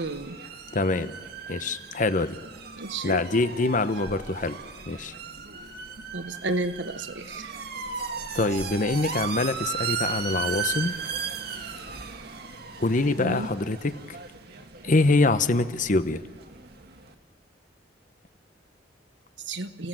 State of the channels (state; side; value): normal; both; correlation 0.42